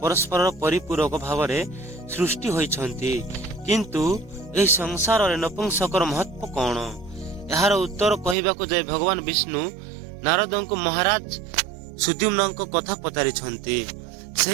परिपूरक भावरे सृष्टि होइछंती, किंतु एही संसार रे नपुंसकर महत्व कौन? यार उत्तर कहिबाको जाय भगवान विष्णु नारदंको महाराज सुद्युम्नंको कथा पचारिछंती।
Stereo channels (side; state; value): left; drops out; at 8.3 s